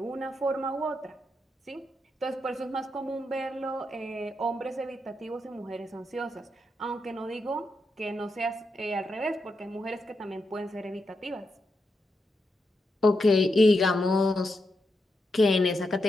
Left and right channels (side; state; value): both; normal; correlation 0.85